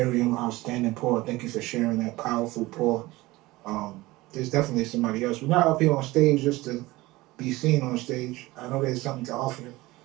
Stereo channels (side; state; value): left; quieter; 19.8 dB